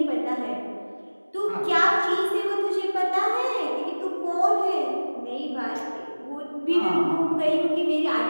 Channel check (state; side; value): inverted; both; correlation -1.00